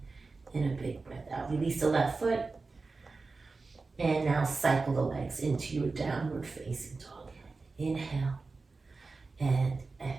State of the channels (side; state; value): left; quieter; 3.9 dB